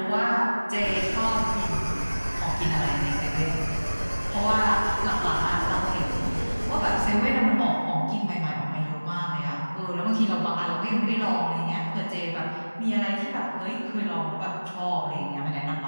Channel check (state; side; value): inverted; both; correlation -1.00